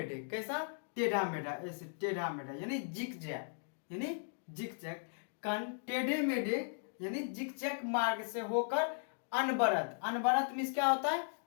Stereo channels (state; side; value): silent; right; digital silence